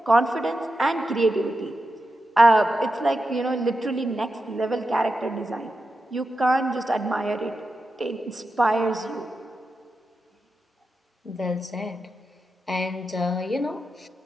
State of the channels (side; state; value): both; normal; correlation 0.89